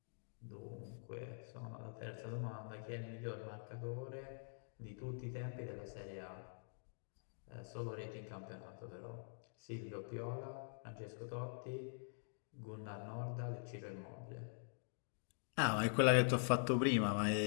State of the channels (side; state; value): right; silent; digital silence